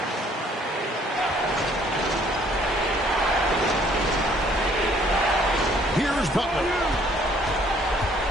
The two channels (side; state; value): both; normal; correlation 0.61